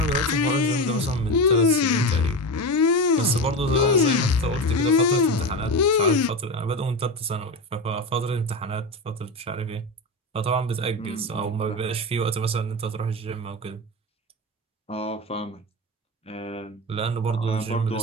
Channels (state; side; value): normal; both; correlation 0.20